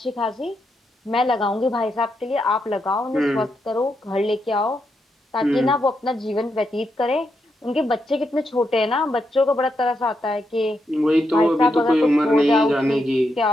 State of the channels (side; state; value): both; normal; correlation 0.82